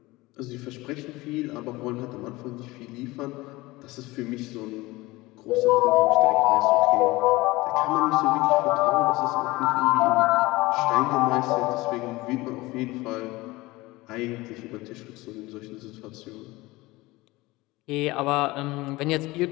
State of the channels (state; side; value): quieter; right; 20.6 dB